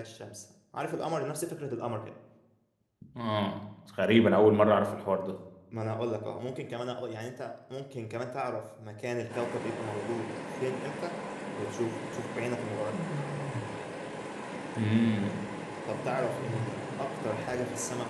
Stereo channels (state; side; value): identical; both; correlation 1.00